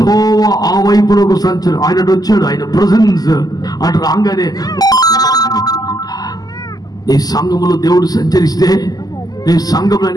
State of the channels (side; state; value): right; late; 0.18 ms